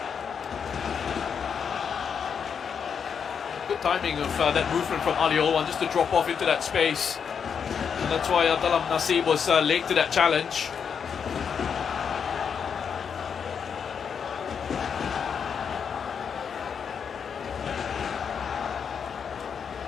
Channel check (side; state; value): right; quieter; 6.9 dB